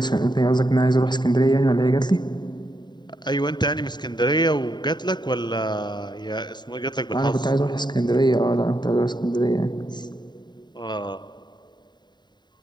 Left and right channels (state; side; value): late; right; 0.21 ms